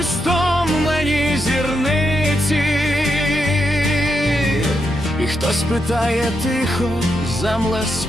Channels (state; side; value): normal; both; correlation 0.83